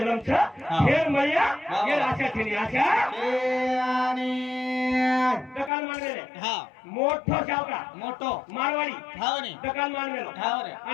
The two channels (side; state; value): right; drops out; at 5.7 s